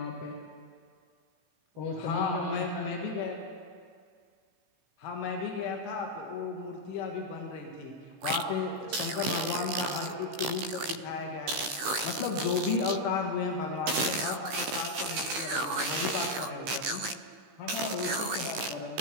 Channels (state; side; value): late; left; 16 ms